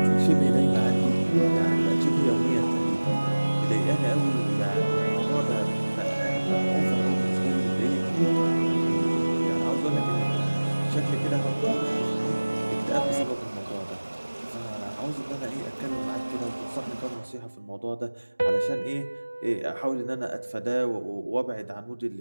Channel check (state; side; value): inverted; both; correlation -1.00